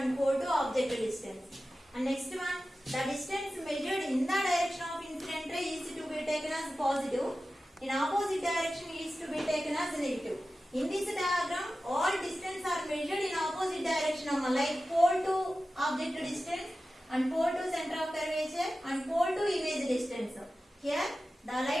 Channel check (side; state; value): both; normal; correlation 0.94